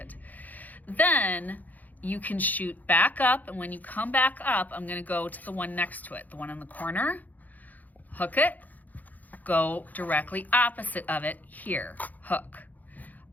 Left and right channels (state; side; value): late; right; 0.081 ms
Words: Then you can shoot back up, and when you come back up, I'm gonna go to the one next to it, the one in the corner, hook it, go directly opposite of it here, hook.